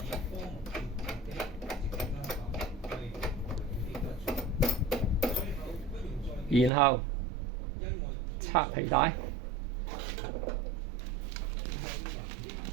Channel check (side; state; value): left; drops out; at 6.7 s